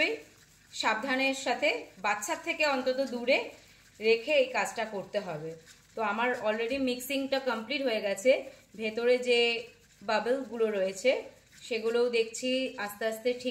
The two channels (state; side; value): identical; both; correlation 1.00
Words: সাবধানের সাথে, বাচ্চার থেকে অন্তত দূরে রেখে এই কাজটা করতে হবে। তো আমার অলরেডি মিক্সিংটা কমপ্লিট হয়ে গেছে। ভেতরে যে বাবলগুলো রয়েছে সেগুলোও দেখছি আস্তে আস্তে